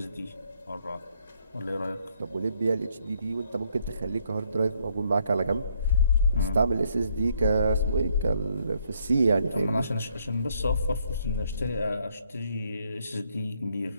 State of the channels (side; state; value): both; inverted; correlation -0.70